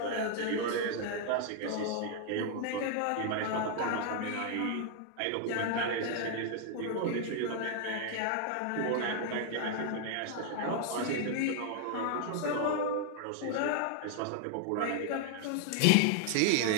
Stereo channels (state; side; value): different; both; correlation 0.00